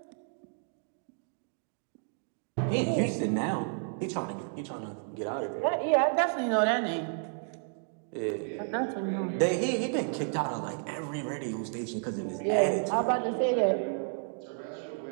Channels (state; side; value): silent; left; 57 dB below the other